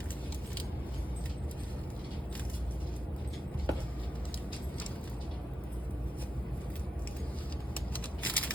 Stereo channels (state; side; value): normal; both; correlation 0.88